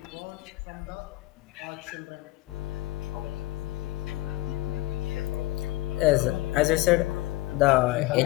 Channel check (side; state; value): right; quieter; 19.0 dB